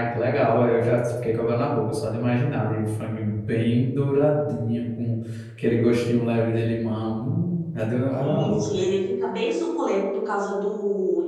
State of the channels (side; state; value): both; identical; correlation 1.00